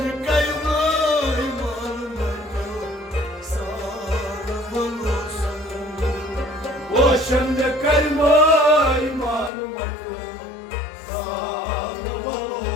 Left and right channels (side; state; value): right; drops out; at 9.5 s